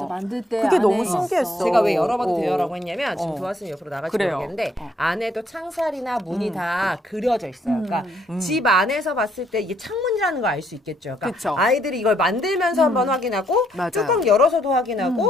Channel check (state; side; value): normal; both; correlation 0.71